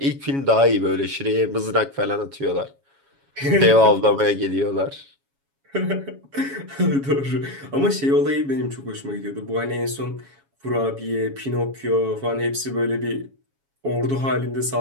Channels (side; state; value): left; late; 7.2 ms